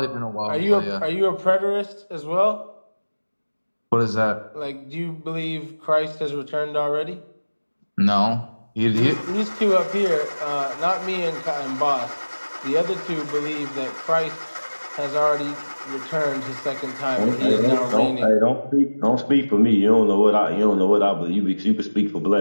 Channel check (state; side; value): inverted; both; correlation -1.00